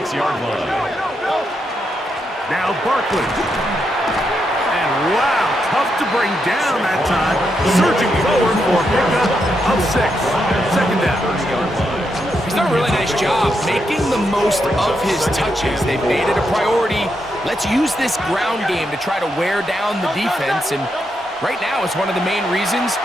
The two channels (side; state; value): both; normal; correlation 0.82